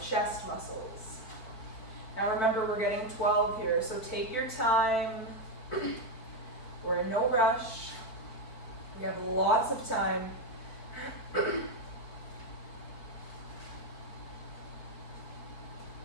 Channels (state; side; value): late; right; 4.5 ms